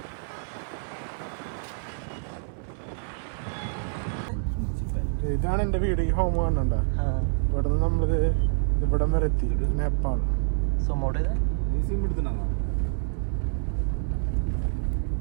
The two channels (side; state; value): left; silent; 60 dB below the other